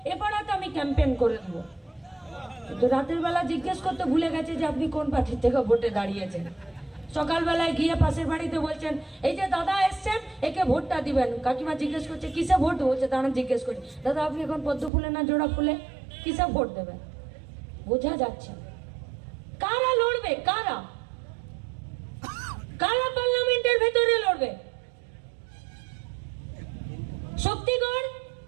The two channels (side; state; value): left; drops out; at 14.9 s